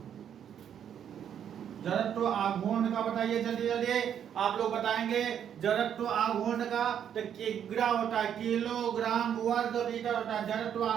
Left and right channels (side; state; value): left; quieter; 9.0 dB